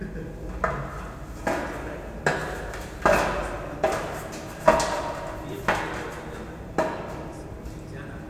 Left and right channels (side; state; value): both; identical; correlation 1.00